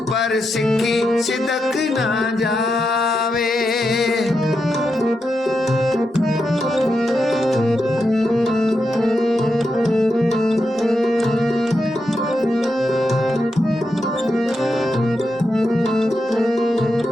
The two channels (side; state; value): both; normal; correlation 0.86